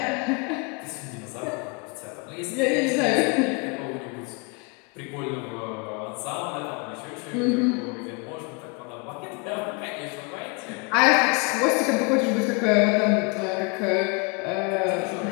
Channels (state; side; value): quieter; right; 31.0 dB